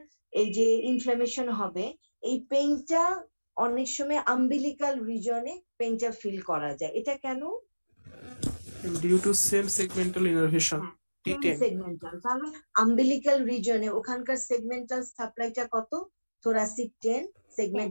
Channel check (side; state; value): both; inverted; correlation -1.00